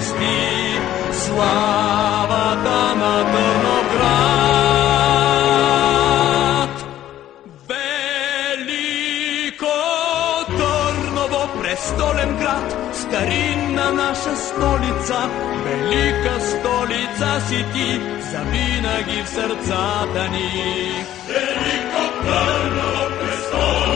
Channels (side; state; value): right; quieter; 12.6 dB